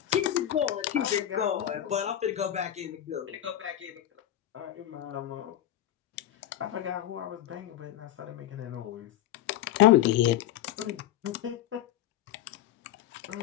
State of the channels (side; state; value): right; quieter; 12.0 dB